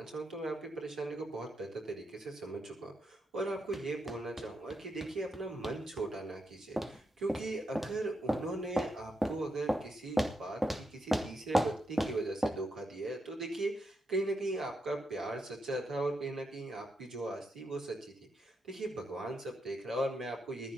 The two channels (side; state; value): both; normal; correlation 0.83